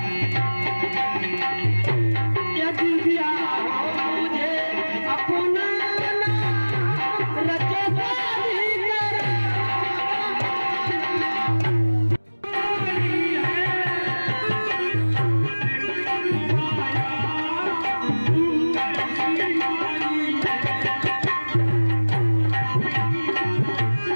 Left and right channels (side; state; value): both; inverted; correlation -1.00